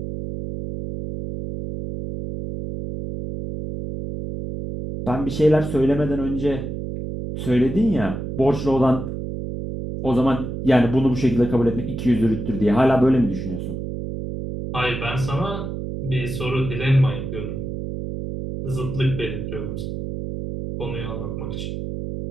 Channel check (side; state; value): right; noise; hum, 5 dB below the sound